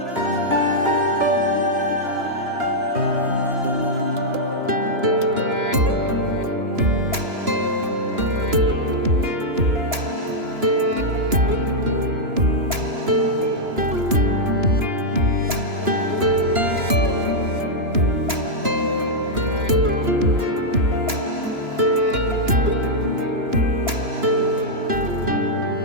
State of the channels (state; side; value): late; left; 2.9 ms